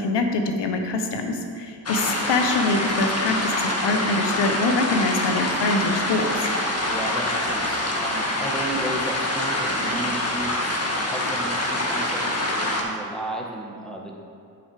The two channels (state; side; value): normal; both; correlation 0.11